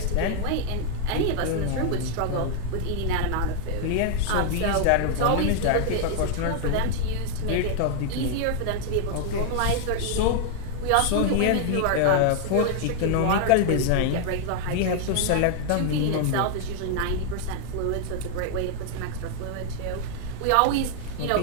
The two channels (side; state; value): both; different; correlation 0.00